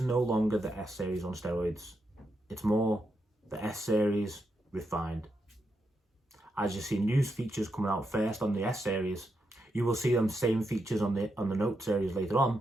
no longer the S series on steroids. It's more the S series refined. As you see new features coming out first on the S series, you will see them same features on the Note series later on,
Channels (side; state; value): both; normal; correlation 0.84